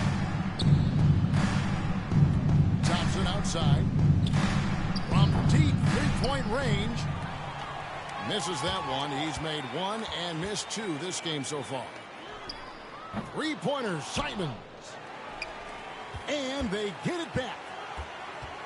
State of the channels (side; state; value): both; identical; correlation 1.00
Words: Thompson outside. From deep three-point range. Misses that one. He's made 1 and missed 2 this game so far. Three-pointer, Simons. And they get it back.